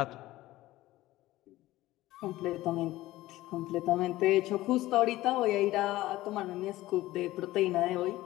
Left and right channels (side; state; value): right; quieter; 16.8 dB